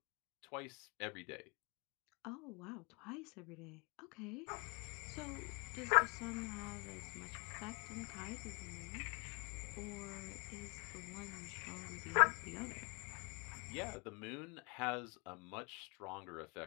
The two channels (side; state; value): right; quieter; 31.6 dB